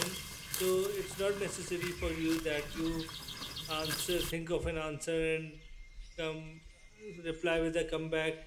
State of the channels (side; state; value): both; identical; correlation 1.00